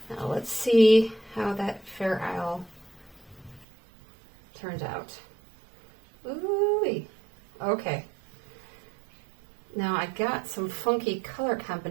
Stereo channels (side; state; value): left; drops out; at 3.7 s